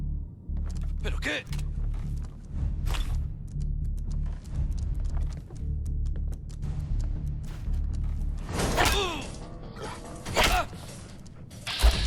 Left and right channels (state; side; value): identical; both; correlation 1.00